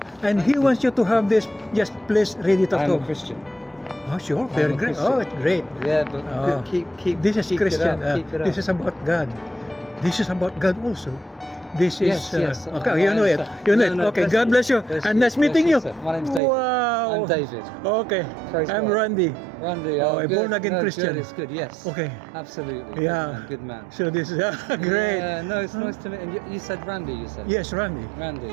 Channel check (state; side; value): drops out; left; at 16.4 s